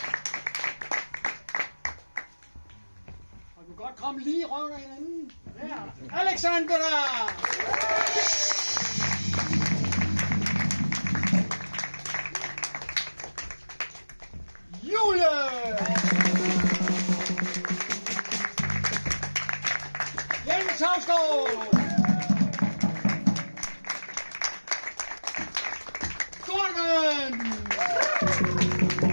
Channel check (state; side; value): inverted; both; correlation -1.00